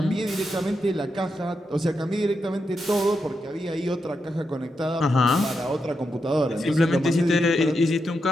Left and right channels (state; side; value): normal; both; correlation 0.85